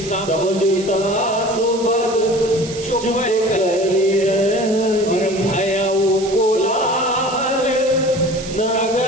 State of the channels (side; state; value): right; noise; hiss, 14 dB below the sound